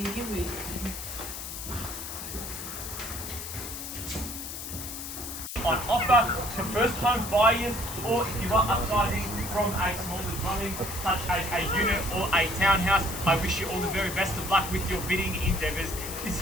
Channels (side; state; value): left; noise; hiss, 8 dB below the sound